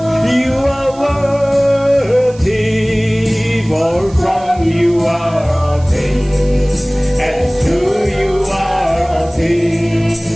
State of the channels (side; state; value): right; noise; hiss, 24 dB below the sound